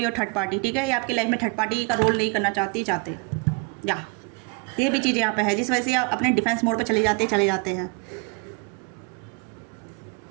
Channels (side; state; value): left; quieter; 30.4 dB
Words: third party, ठीक है, ये आपकी लाइफ में थर्ड पार्टी का रोल नहीं करना चाहते या ये भी चीज़ यहाँ पे है, जिस वजह से आप अपने डिफेंस मोड पे चले जाते हैं।